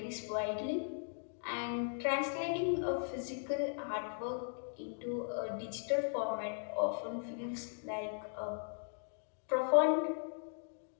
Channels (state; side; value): silent; right; digital silence